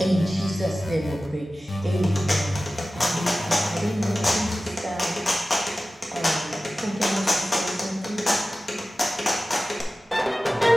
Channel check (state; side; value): normal; both; correlation 0.96